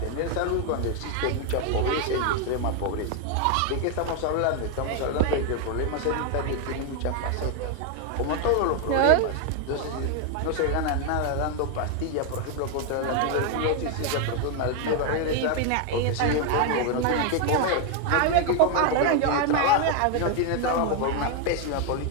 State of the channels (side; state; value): both; different; correlation 0.01